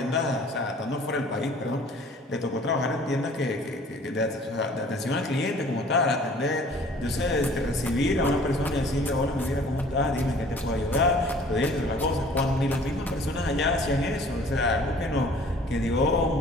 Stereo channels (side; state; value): both; normal; correlation 0.51